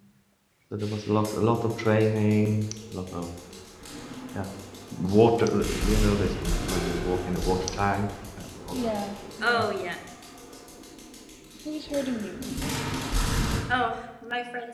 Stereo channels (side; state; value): both; identical; correlation 1.00